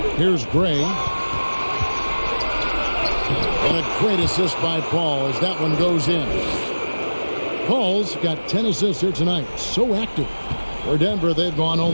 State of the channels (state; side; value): inverted; both; correlation -1.00